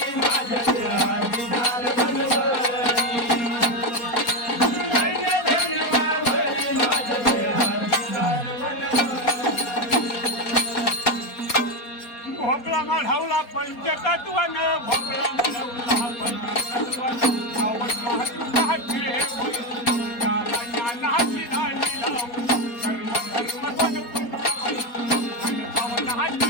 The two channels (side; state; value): right; late; 4.2 ms